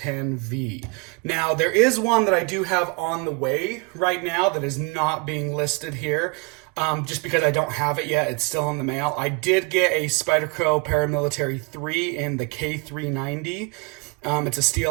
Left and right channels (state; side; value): quieter; left; 30.0 dB